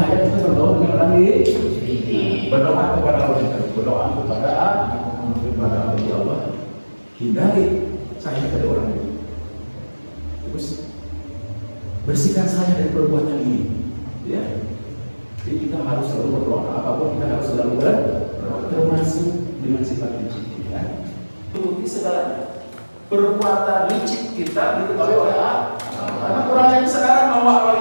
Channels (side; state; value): both; inverted; correlation -1.00